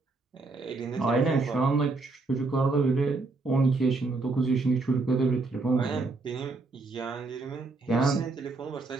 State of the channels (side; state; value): left; quieter; 3.6 dB